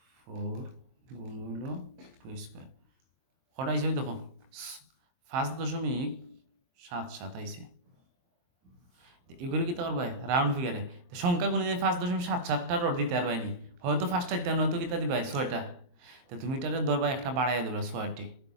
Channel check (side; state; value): left; late; 22 ms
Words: গুণ হইল 2 স্কোয়ার কটা আইছে ওই দেখো 5.77 আইছে। এগুলো কি তো পারবাই রাউন্ড ফিগারে সংখ্যা গুণে যে 5.77টা রড দিতে পারবাই নি, হয়তো 5টা দিতে হয়তো কিতা দিবাই 6টা। তো তুমি এটারে ধরবা একটা বাড়াইয়া ধরবা 6টি